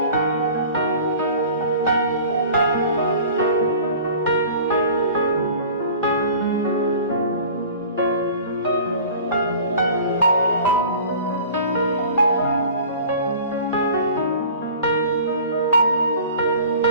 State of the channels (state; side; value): inverted; both; correlation -0.44